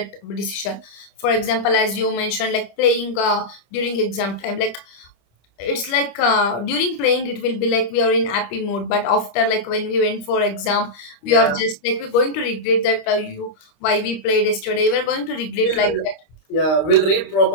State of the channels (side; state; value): right; late; 25 ms